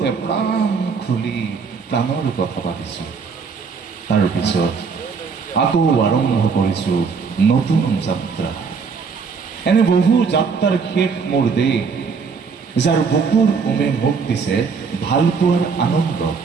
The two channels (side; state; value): left; quieter; 5.4 dB